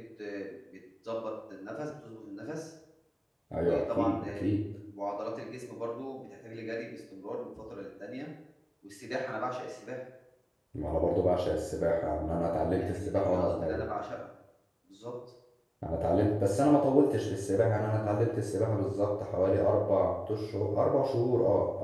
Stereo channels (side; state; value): both; identical; correlation 1.00